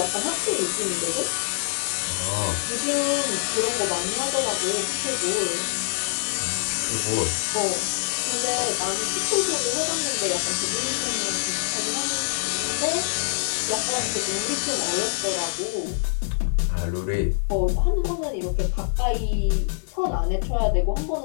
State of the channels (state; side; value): silent; right; 59 dB below the other